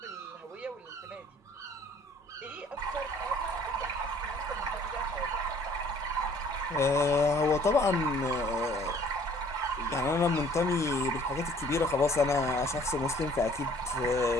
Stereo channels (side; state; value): both; normal; correlation 0.56